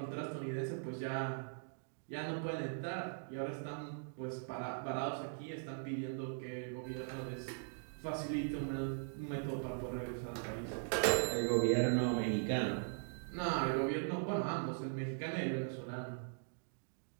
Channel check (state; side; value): silent; left; digital silence